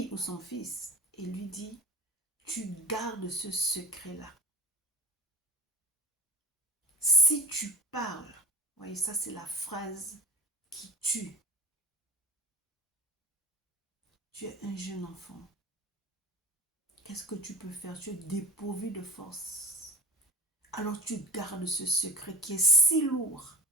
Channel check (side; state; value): both; normal; correlation 0.31